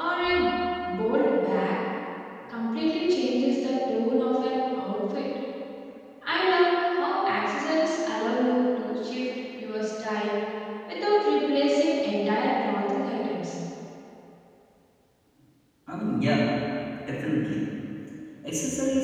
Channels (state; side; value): identical; both; correlation 1.00